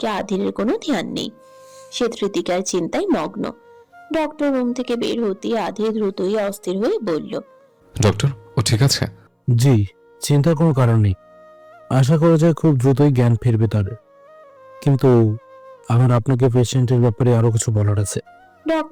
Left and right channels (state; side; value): identical; both; correlation 1.00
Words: আধিরের কোনো ধ্যান নেই। সে কৃতিকার চিন্তায় মগ্ন। ডক্টর রুম থেকে বের হতেই আধির দ্রুতই অস্থির হয়ে বলল, ডক্টর, ও ঠিক আছে? জি, চিন্তার কোনো কারণ নেই। আশা করা যায় খুব দ্রুতই জ্ঞান ফিরবে তার। কিন্তু আমার আপনাকে পেশেন্টের ব্যাপারে আরো কিছু বলার আছে।